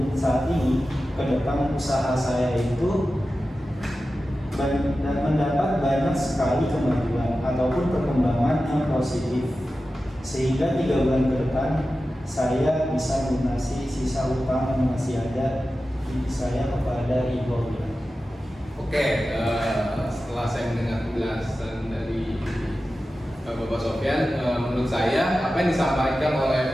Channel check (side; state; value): both; normal; correlation 0.94